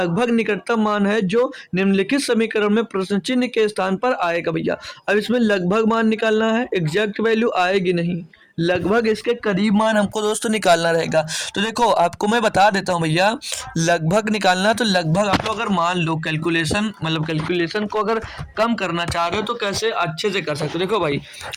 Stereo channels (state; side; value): identical; both; correlation 1.00